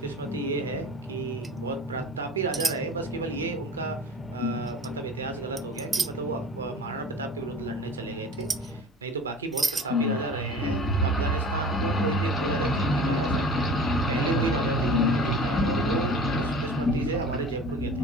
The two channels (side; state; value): both; normal; correlation 0.40